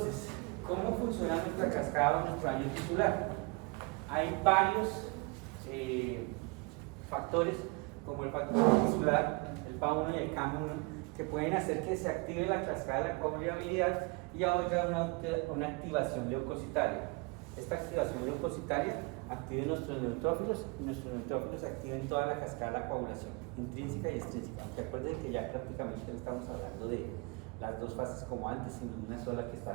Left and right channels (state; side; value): quieter; left; 28.5 dB